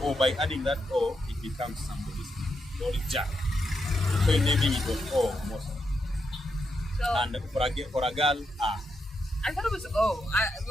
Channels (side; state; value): both; normal; correlation 0.83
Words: by adding that O, it becomes somebody's name. So it's Jack. So in naming it was O most. So, and for a girl, I thought it was O.